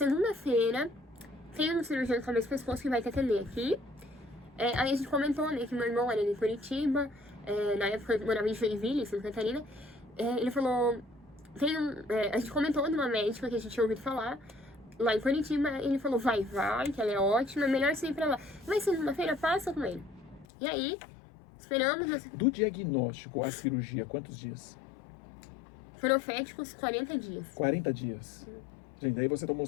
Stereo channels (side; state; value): right; drops out; at 20.5 s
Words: tem um cirurgião de cabeça e pescoço que vai te atender aqui. Aí a gente comentou, né, que meu irmão era de Curitiba, na época eu morava em Joinville, em Santa Catarina. Ele falou, a gente comentou de uma médica que a gente tinha ouvido falar, lá em Curitiba. Ele falou, vai, que ela é ótima, é melhor você ir pra lá. Mas segunda-feira passa com ele. E aí, esperamos. Do diagnóstico à cirurgia, quantos dias? Proféticos 40 dias. 40 dias. Gente, aí você tomou